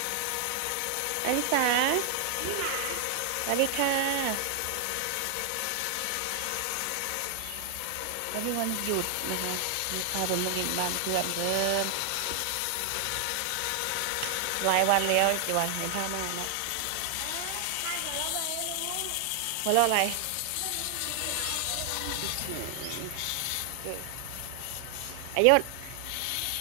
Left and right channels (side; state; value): both; different; correlation 0.00